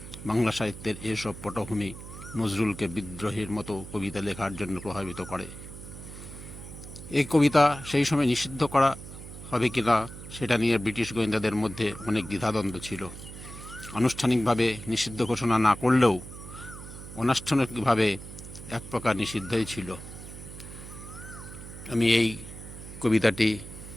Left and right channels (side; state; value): right; noise; hum, 13 dB below the sound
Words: বাংলা সাহিত্যের এসব পটভূমি নজরুলকে বিদ্রোহীর মতো কবিতা লেখার জন্য প্রভাবিত করে। এই কবিতা সেই সময় নিষিদ্ধ করা হবে কিনা সেটা নিয়ে ব্রিটিশ গোয়েন্দাদের মধ্যে অনেক দ্বিধাদ্বন্দ্ব ছিল। আনুষ্ঠানিকভাবে নিষিদ্ধ ঘোষণা না করলেও অনানুষ্ঠানিকভাবে এক প্রকার নিষিদ্ধই ছিল। আমি এই কবিতাটি